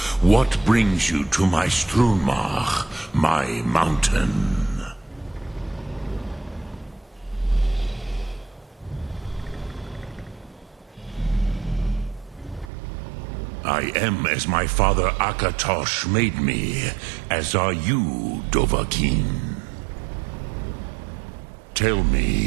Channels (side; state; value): left; drops out; at 12.7 s